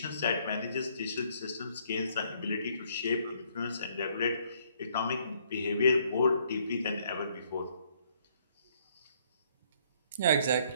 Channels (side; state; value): both; inverted; correlation -0.66